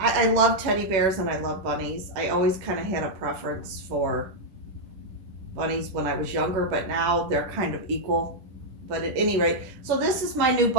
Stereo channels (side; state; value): left; late; 10 ms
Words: love teddy bears and I love bunnies. I always kind of had a preference for bunnies when I was younger, but now they're kind of equal. But at any rate, so this is my new